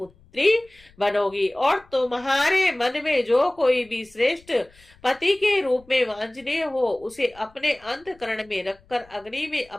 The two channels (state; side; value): noise; left; rumble, 29 dB below the sound